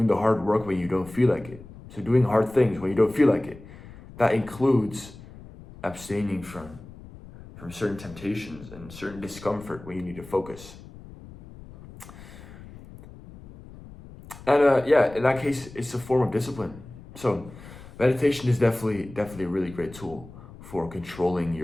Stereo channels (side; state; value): left; noise; rumble, 17 dB below the sound